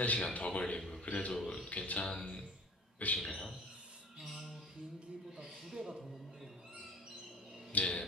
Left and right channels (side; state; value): both; normal; correlation 0.43